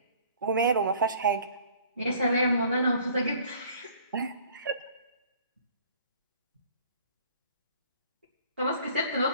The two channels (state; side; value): inverted; both; correlation -0.54